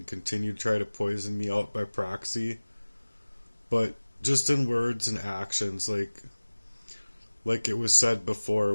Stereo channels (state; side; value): inverted; both; correlation -1.00